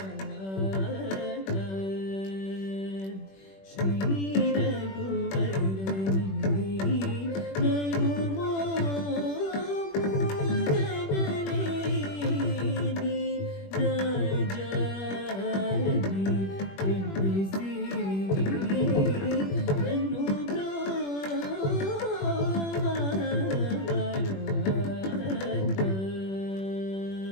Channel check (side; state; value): right; late; 21 ms